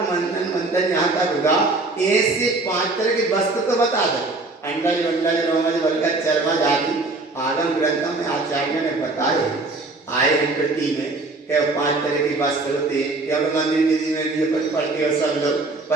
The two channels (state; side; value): quieter; left; 3.3 dB